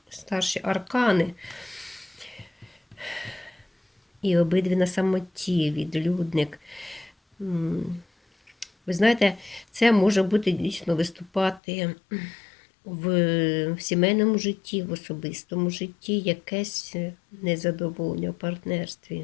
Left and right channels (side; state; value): right; drops out; at 11.6 s